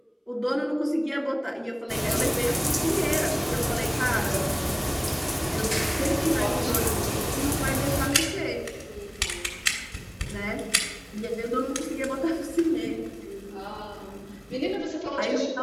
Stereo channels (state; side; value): identical; both; correlation 1.00